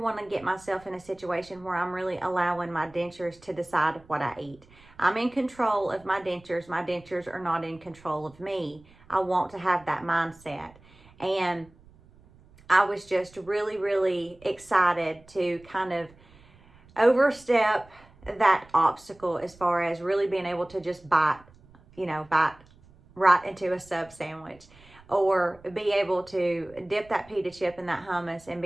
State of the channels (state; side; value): noise; right; rumble, 26 dB below the sound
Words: to get myself in a situation where I'm really allowing my dentures to decide what I eat. I'm in control of my dentures. My dentures are not in control of me. I want to have that mindset. And I was just really, really excited to kind of overstep that obstacle as far as really being able to just bite right into a sub sandwich, or be able to dip that pita chip in that hummus and